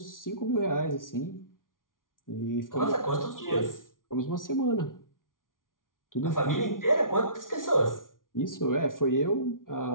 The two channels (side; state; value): right; late; 0.89 ms